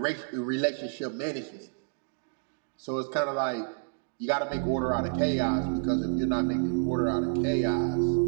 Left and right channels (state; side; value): silent; left; digital silence